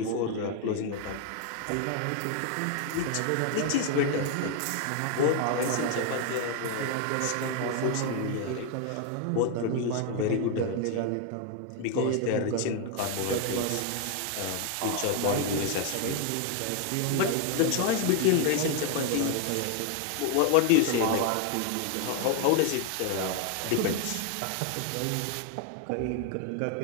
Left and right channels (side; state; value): both; different; correlation 0.01